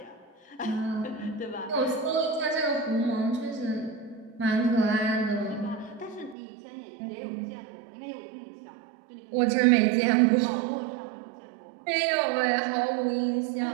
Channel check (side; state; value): left; drops out; at 6.4 s